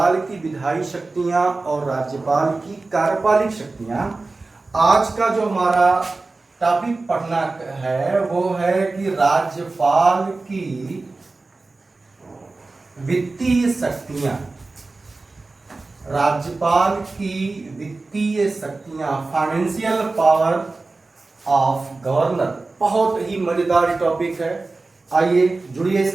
की विधायी शक्तियां और राज्यपाल की कार्यपालिक शक्तियां। आज का जो हमारा टॉपिक पढ़ना है वो है कि राज्यपाल की वित्तीय शक्तियां, राज्यपाल की वित्तीय शक्तियां, फाइनेंशियल पावर ऑफ गवर्नर। बहुत ही मजेदार टॉपिक है, आइए जुड़िए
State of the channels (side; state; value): left; quieter; 3.5 dB